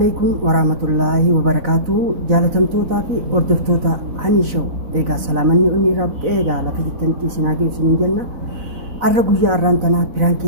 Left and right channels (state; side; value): late; left; 4.0 ms